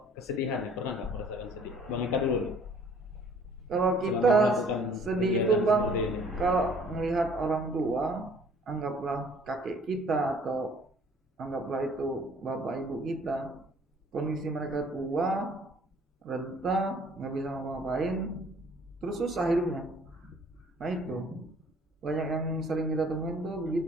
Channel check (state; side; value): normal; both; correlation 0.56